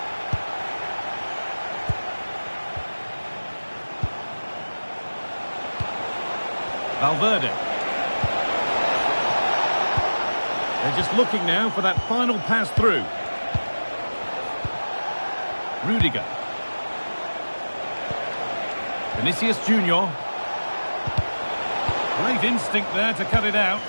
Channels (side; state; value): both; inverted; correlation -1.00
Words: Valverde. They're just looking now for that final pass through. Rudiger. Vinicius Junior. Great instinct there to cut it out.